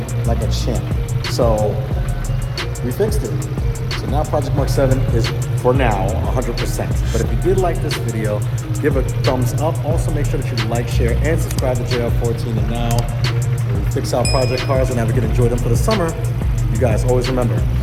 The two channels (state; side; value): identical; both; correlation 1.00